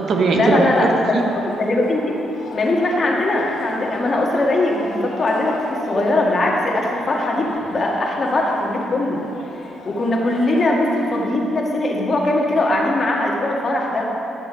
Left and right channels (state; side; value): normal; both; correlation 0.80